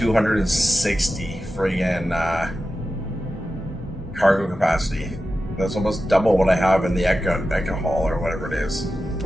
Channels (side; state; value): both; normal; correlation 0.92